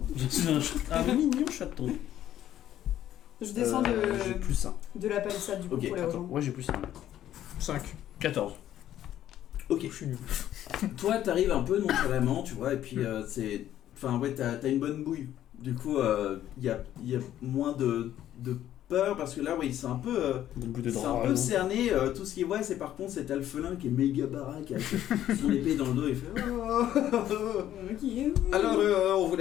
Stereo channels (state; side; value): quieter; right; 11.9 dB